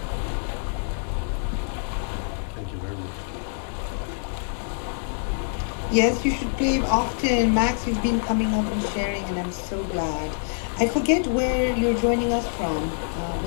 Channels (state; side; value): silent; right; digital silence